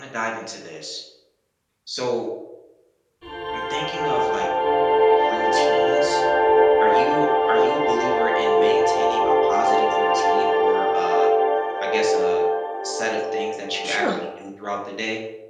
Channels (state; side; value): identical; both; correlation 1.00